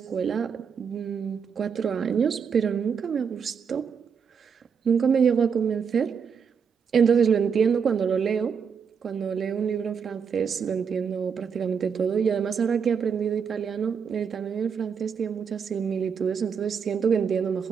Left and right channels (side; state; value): left; quieter; 6.6 dB